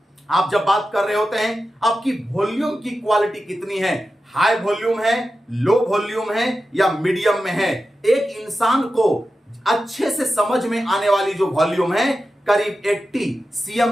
आप जब बात कर रहे होते हैं, आपकी वॉल्यूम की क्वालिटी कितनी है, हाई वॉल्यूम है, लो वॉल्यूम है या मीडियम में है। एक इंसान को अच्छे से समझ में आने वाली जो वॉल्यूम है करीब 80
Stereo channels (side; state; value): both; normal; correlation 0.92